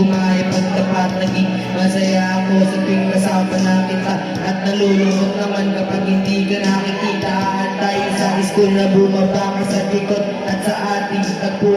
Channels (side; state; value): both; identical; correlation 1.00